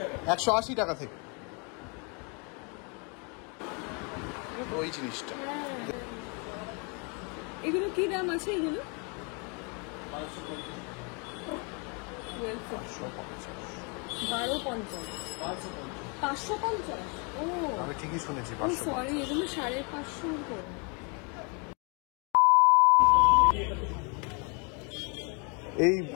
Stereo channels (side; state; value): right; quieter; 34.0 dB